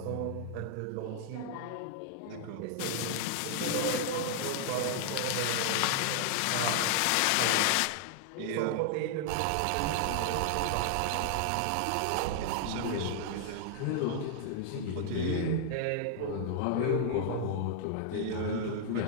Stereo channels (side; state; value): both; different; correlation 0.00